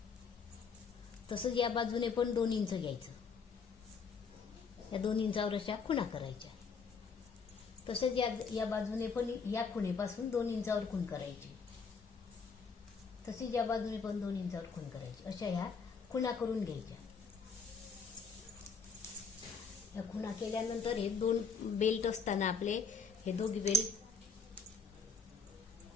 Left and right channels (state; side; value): quieter; right; 5.2 dB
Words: तसंच या बाजूने पण 2 इंच घ्यायचं. या 2 इंचावर अशा खुणा करायच्या. तसंच या बाजूने पण या खुणेपासून 2 इंचावर खूण करायची. तसेच या बाजूने पण 2 इंचावर खूण करायची. अशा ह्या खुणा करून घ्यायच्या. या खुणा केल्यानंतर हे 2 बेल्ट असताना आपले हे दोघी बेल्ट